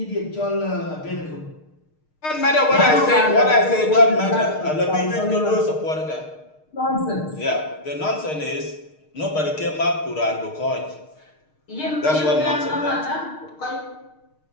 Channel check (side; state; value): right; late; 6.5 ms